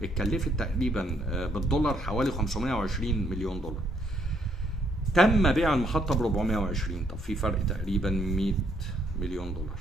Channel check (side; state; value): both; normal; correlation 0.71